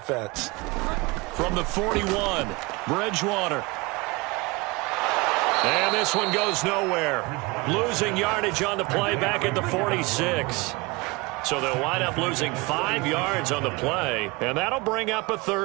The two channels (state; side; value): quieter; left; 24.7 dB